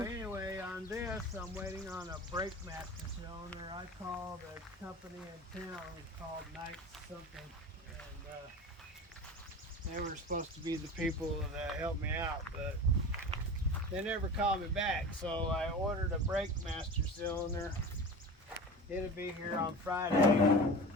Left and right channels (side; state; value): both; normal; correlation 0.33